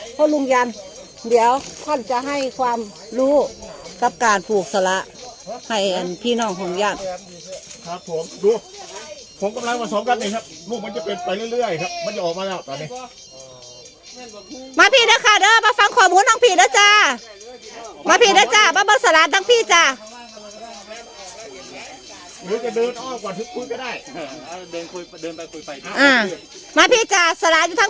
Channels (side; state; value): both; identical; correlation 1.00